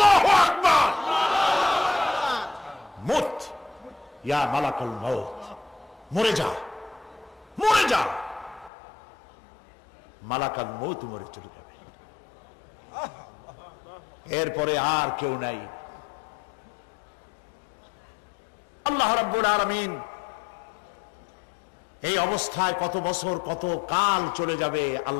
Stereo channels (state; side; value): drops out; right; at 8.7 s